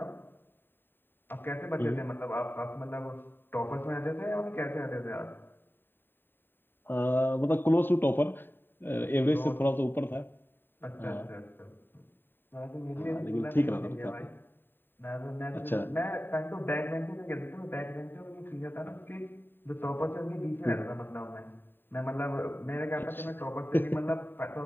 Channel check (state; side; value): late; right; 0.096 ms